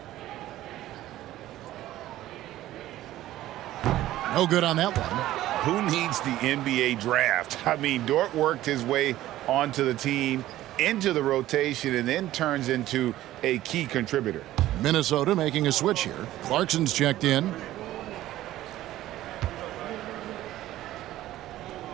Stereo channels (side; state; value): left; quieter; 14.6 dB